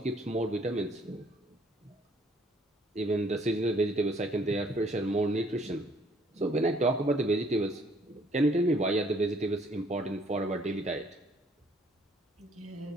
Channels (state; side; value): normal; both; correlation 0.63